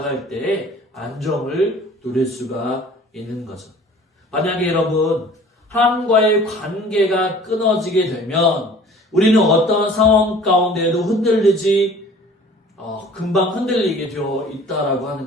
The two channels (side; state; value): both; normal; correlation 0.48